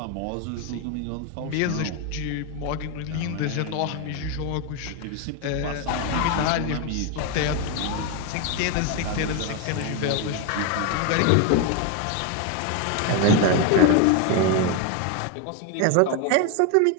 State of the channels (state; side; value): different; both; correlation 0.02